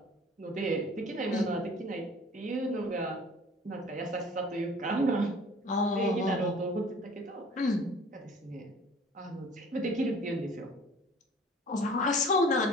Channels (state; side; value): normal; both; correlation 0.48